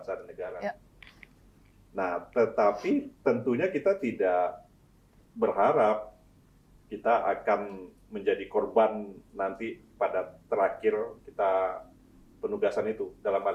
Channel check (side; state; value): both; identical; correlation 1.00